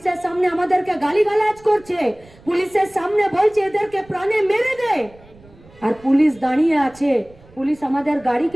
সামনে আমাদেরকে গালিগালাজ করছে, পুলিশের সামনে বলছে এদেরকে প্রাণে মেরে দে। আর পুলিশ দাঁড়িয়ে আছে, পুলিশ আমাদের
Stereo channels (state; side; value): noise; right; rumble, 26 dB below the sound